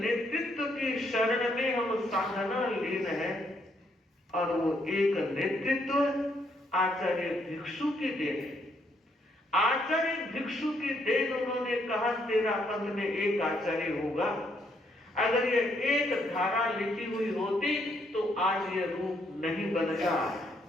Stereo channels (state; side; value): normal; both; correlation 0.73